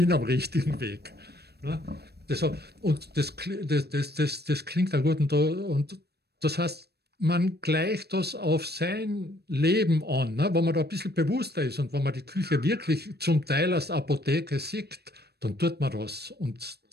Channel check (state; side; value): late; left; 0.47 ms